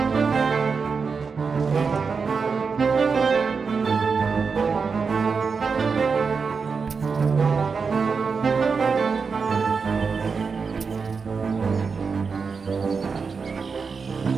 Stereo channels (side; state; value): left; quieter; 5.2 dB